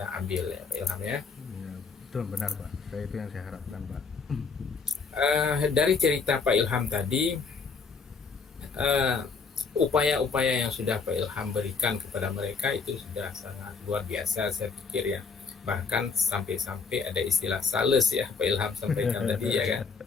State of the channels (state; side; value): quieter; right; 5.1 dB